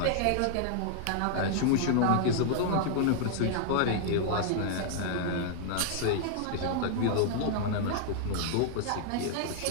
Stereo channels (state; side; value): different; both; correlation -0.01